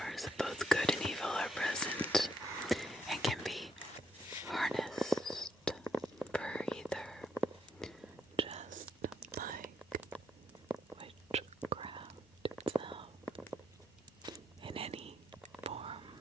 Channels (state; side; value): normal; both; correlation 0.76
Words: of both good and evil are present and can be harnessed for either, just like witchcraft.